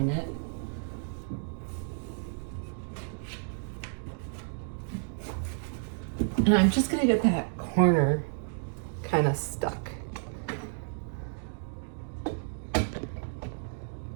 it. And I'm just gonna get that corner kind of stuck.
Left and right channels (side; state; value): left; silent; digital silence